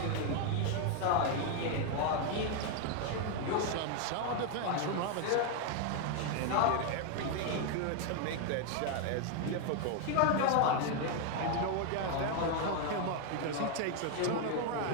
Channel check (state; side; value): different; both; correlation 0.01